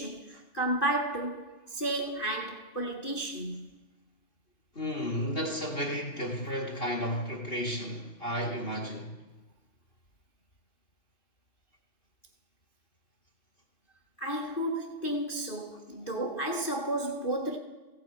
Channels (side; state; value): right; late; 2.5 ms